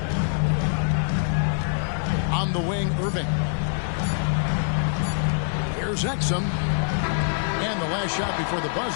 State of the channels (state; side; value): silent; right; 62 dB below the other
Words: On the wing, Irving. Here's Exum. And the last shot before the